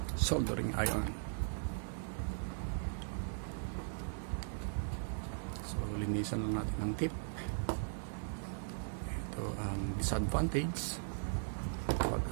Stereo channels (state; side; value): silent; left; digital silence